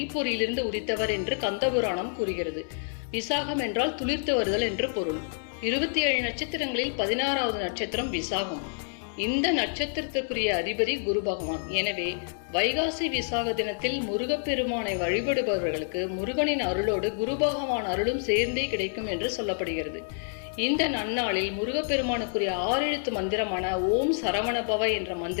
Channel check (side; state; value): right; silent; 59 dB below the other